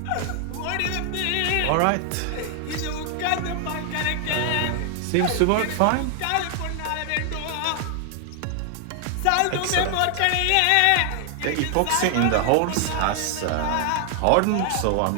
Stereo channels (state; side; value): different; both; correlation 0.00